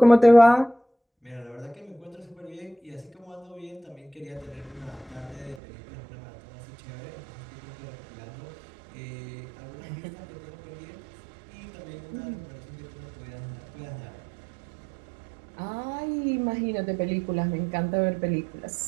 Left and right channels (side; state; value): left; drops out; at 5.6 s